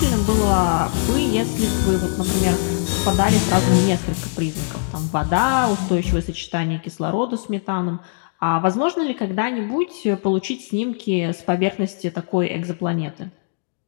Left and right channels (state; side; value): silent; right; digital silence